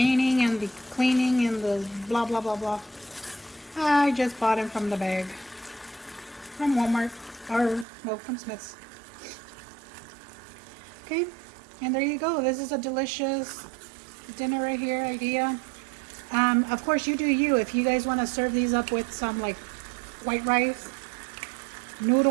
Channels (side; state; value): left; drops out; at 7.9 s